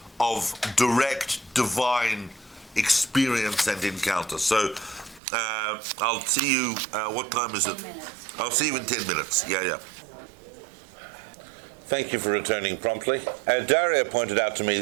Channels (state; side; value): drops out; left; at 5.2 s